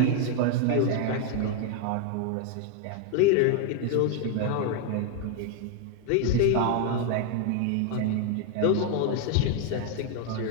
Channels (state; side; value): different; both; correlation 0.00